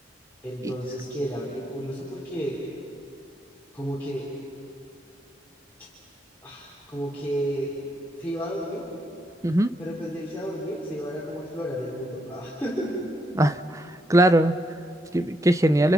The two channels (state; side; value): normal; both; correlation 0.78